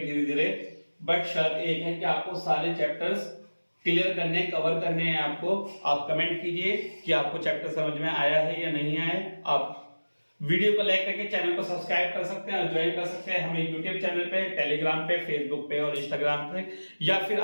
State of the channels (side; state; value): both; inverted; correlation -1.00